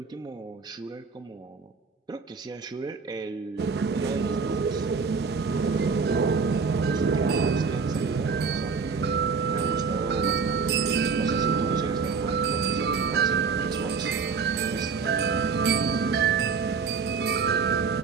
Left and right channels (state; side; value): quieter; left; 5.3 dB